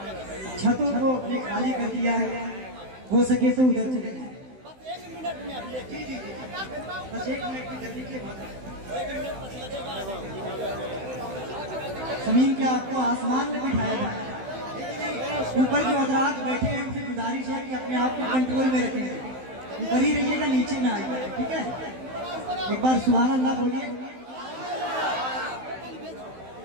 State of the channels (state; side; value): late; left; 16 ms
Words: छतों को अपने खाली कर दिया है, हो सके तो उधर चले जाए। बस 1 मिनट की कर लीजिए। जमीन क्या आपको आसमान में बिठाया गया, ऊपर जो हजरात बैठे हैं उनसे गुजारिश है कि अपने आप को कंट्रोल में रखेंगे, ऊपर ही रहिएगा, नीचे ना आइए, ठीक है। एक बार सुभान अल्लाह बोलिए।